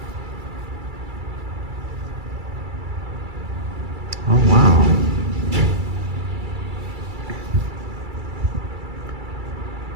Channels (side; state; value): left; late; 2.3 ms